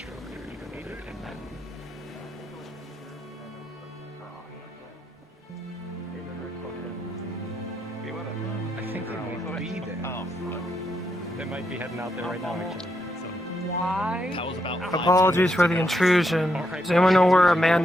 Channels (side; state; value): both; normal; correlation 0.79